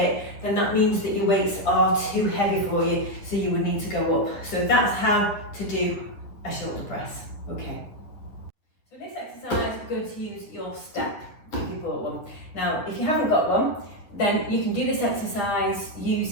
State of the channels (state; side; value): late; right; 9.7 ms